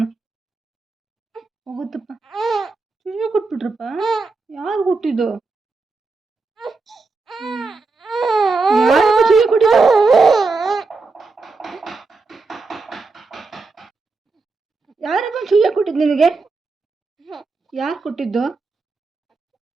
ಹೋಗುತ್ತಪ್ಪ. ಚೂಯ ಕೊಟ್ಬಿಟ್ರಪ್ಪ. ಯಾರು ಕೊಟ್ಟಿದ್ದು? ಯಾರಪ್ಪ ಚೂಯ ಕೊಟ್ಟಿದ್ದು? ಯಾರಪ್ಪ ಚೂಯ ಕೊಟ್ಟಿದ್ದು ನಿನಗೆ? ಯಾರು ಕೊಟ್ಟಿದ್ದು?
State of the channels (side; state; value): left; quieter; 3.9 dB